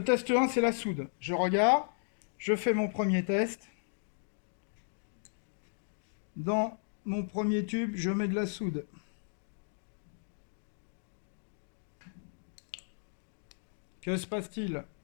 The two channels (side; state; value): right; silent; digital silence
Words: test 1, c'est la soude. Je regarde, je fais mon premier test. Dans mon premier tube, je mets de la soude. Que se passe-t-il?